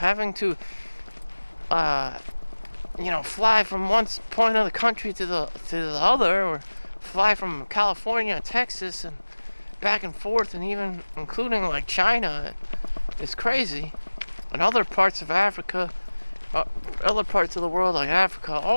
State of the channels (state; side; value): inverted; both; correlation -1.00